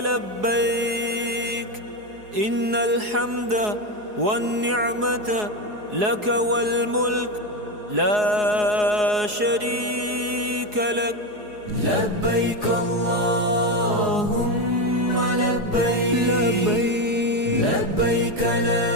إن الحمد والنعمة لك والملك لا شريك لك لبيك اللهم لبيك لبيك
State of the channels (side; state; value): left; late; 4.8 ms